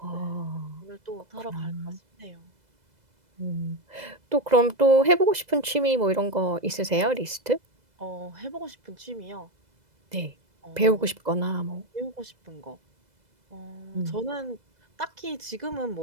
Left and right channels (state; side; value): late; left; 2.0 ms